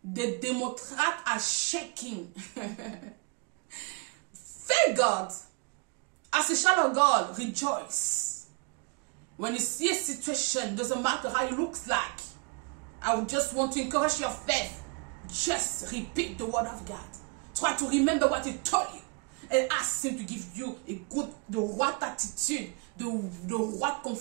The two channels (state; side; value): quieter; left; 35.2 dB